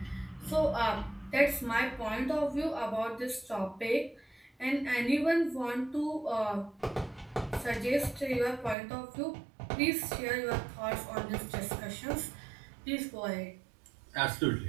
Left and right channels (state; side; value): drops out; left; at 8.8 s